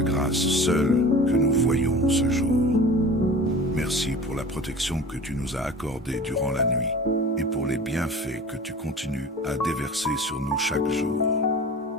grâce seule que nous voyons ce jour. Merci pour la protection que tu nous as accordée durant la nuit et pour les bienfaits que tu continues à déverser sur nous chaque jour.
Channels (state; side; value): normal; both; correlation 0.38